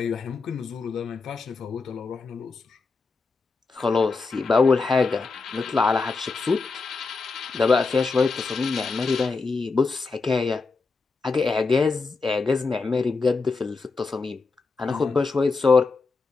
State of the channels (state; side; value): quieter; right; 4.3 dB